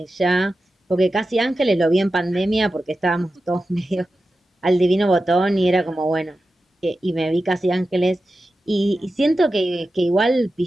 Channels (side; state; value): both; normal; correlation 0.92